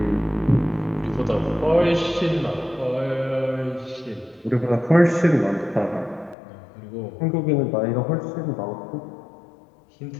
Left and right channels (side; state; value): right; drops out; at 6.4 s